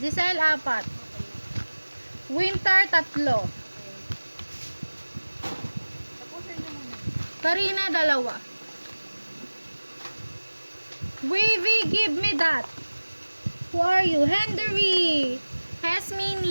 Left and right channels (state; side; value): inverted; both; correlation -1.00